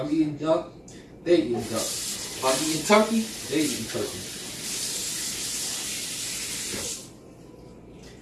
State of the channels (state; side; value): identical; both; correlation 1.00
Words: eating duck, they eat duck. If I'm eating turkey, they eat turkey.